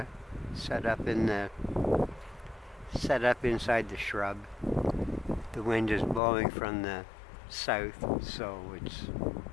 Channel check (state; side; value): drops out; right; at 6.2 s